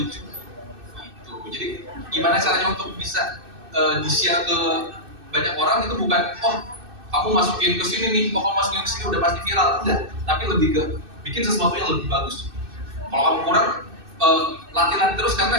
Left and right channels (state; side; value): late; left; 2.6 ms